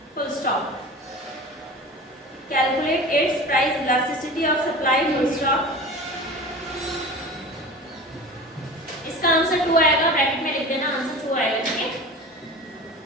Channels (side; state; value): both; normal; correlation 0.35